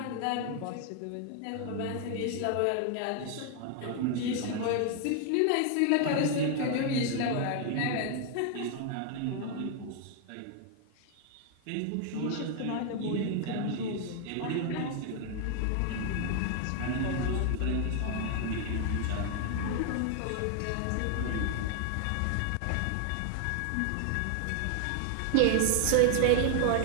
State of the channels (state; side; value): different; both; correlation 0.00